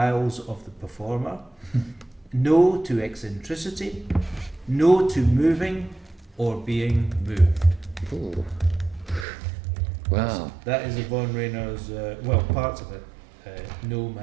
of the performer, no to eccentricity, no to moving or being moved. Ooh. Wow. That is Yvonne Rayner's, parts of it, No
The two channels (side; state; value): left; drops out; at 9.2 s